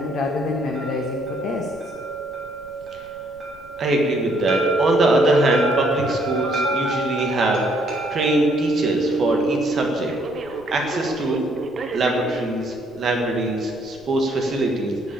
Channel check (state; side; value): noise; right; rumble, 26 dB below the sound